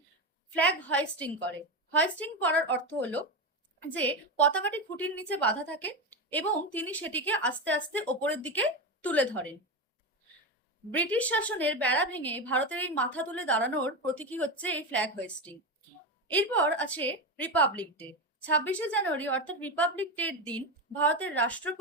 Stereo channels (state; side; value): normal; both; correlation 0.15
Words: ফ্ল্যাগ হোয়েস্টিং করে। হোয়েস্টিং করার অর্থ হলো যে পতাকাটি খুঁটির নিচে বাঁধা থাকে এবং তিনি সেটিকে আস্তে আস্তে ওপরের দিকে তুলে ধরেন। ব্রিটিশ শাসনের বেড়া ভেঙে ভারতের এই মাথা তুলে দাঁড়ানোর প্রতীকী হচ্ছে এই ফ্ল্যাগ হোয়েস্টিং। এরপর আছে রিপাবলিক ডে। 26শে জানুয়ারি অর্থাৎ রিপাবলিক ডের দিন ভারতের